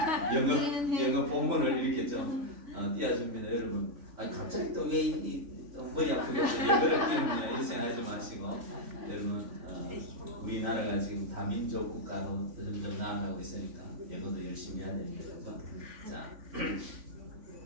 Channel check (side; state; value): left; late; 3.5 ms